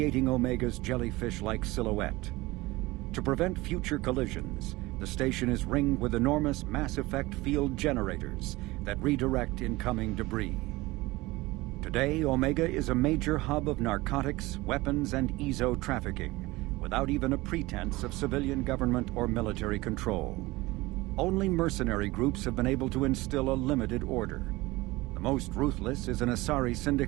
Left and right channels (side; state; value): left; quieter; 20.7 dB